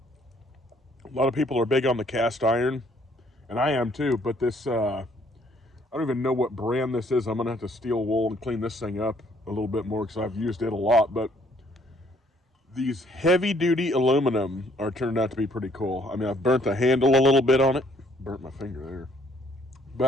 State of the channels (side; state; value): both; normal; correlation 0.64